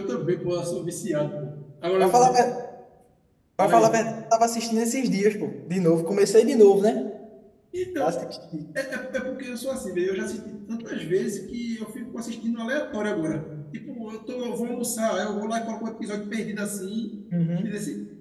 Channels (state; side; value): identical; both; correlation 1.00